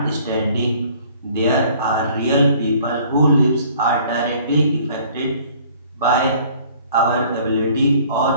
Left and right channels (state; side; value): inverted; both; correlation -0.55